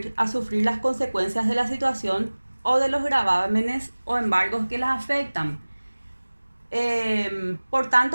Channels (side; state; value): both; inverted; correlation -1.00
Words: las consecuencias de la situación o de los gravámenes o embargos que las afectan. Por